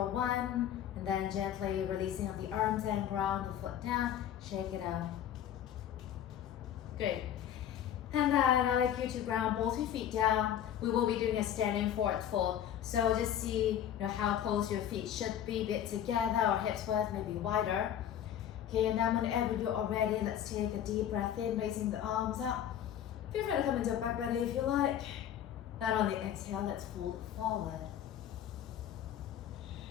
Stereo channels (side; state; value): right; quieter; 10.3 dB